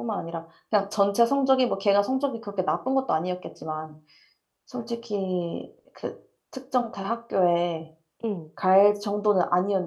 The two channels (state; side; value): identical; both; correlation 1.00